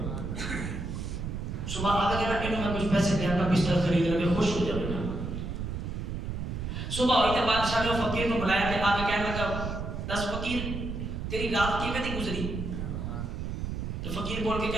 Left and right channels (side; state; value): right; noise; rumble, 4 dB below the sound